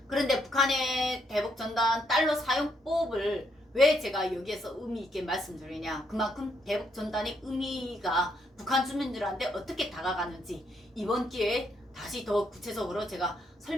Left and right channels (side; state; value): both; normal; correlation 0.75